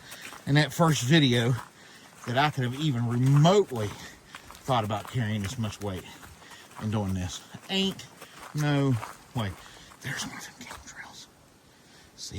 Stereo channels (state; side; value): identical; both; correlation 1.00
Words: in that first video, that I could have even remotely thought about carrying this much weight and doing this. Ain't no way. There's one of them game trails. See